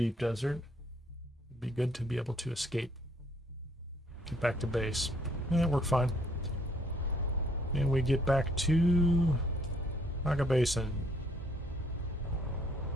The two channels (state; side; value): normal; both; correlation 0.65